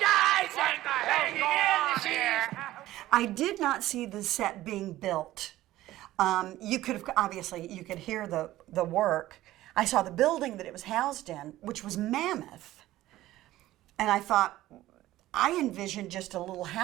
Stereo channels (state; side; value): quieter; left; 15.5 dB